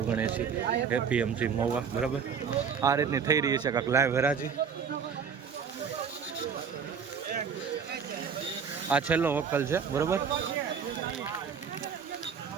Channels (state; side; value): quieter; left; 6.6 dB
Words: એપીએમસી મહુવા બરાબર આ રીતની થઈ રહી છે કાંક લાઈવ હરાજી આ છેલ્લો વકલ છે બરાબર